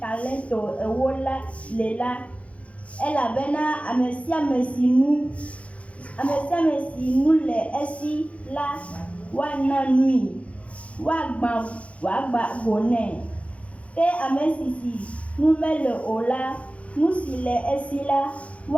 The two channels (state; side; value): late; right; 0.064 ms